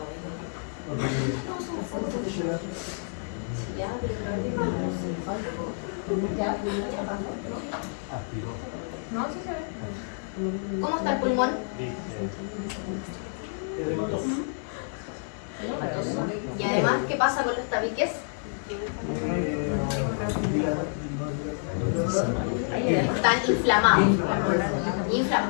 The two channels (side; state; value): right; silent; digital silence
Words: No, sí se ve. ¿Cómo está el pulmón? Y además, ¿qué pasa con los tabiques? Están inflamados.